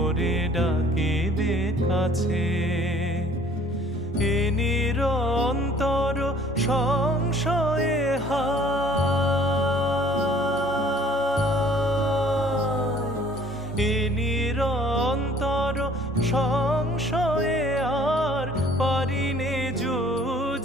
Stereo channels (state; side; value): normal; both; correlation 0.55